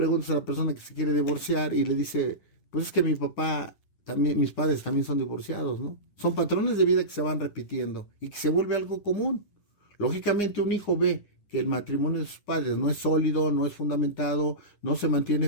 a la persona que se quiere divorciar y le dice, pues es que mi papá, también, mis padres también son divorciados, ¿no? Son patrones de vida que se van repitiendo y que se vuelve algo común. Lógicamente un hijo ve que el matrimonio de sus padres no es sólido, no es fundamentado, no se mantiene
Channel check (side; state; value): right; late; 10 ms